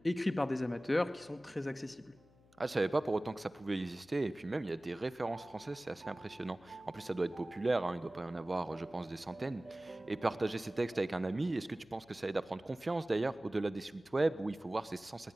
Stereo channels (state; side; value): noise; left; hum, 28 dB below the sound